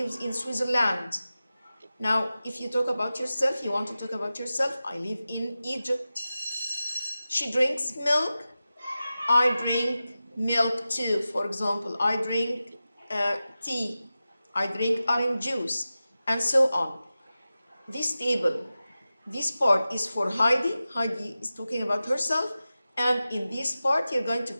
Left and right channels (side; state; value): both; inverted; correlation -0.94